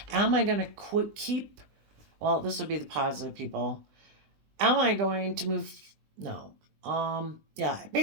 Am I going to keep, well, this would be the positive people. Am I going to move? No. Yeah,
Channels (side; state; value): left; late; 20 ms